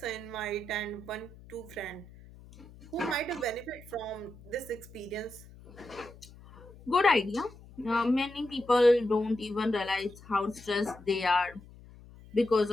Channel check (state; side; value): noise; left; hum, 20 dB below the sound